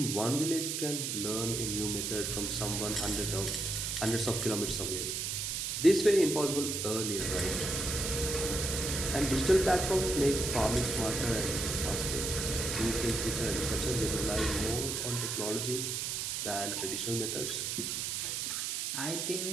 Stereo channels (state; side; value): noise; right; hiss, 2 dB below the sound